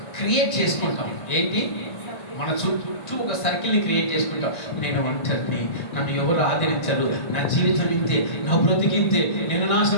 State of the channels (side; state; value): right; late; 1.9 ms